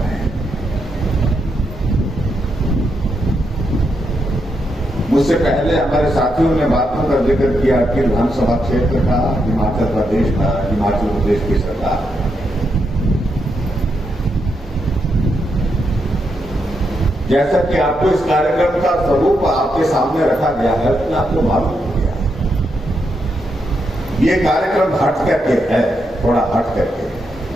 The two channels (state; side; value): normal; both; correlation 0.82